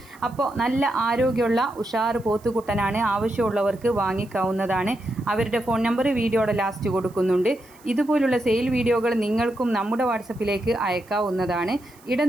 അപ്പോൾ നല്ല ആരോഗ്യമുള്ള ഉഷാർ പോത്തുകുട്ടനാണ്. ആവശ്യമുള്ളവർക്ക് വാങ്ങിക്കാവുന്നതാണ്. അവരുടെ ഫോൺ നമ്പർ വീഡിയോയുടെ ലാസ്റ്റ് കൊടുക്കുന്നുണ്ട്. ഇതുപോലുള്ള സെയിൽ വീഡിയോകൾ നിങ്ങൾക്കും നമ്മുടെ വാട്സപ്പിലേക്ക് അയക്കാവുന്നതാണ്.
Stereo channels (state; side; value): noise; right; hiss, 27 dB below the sound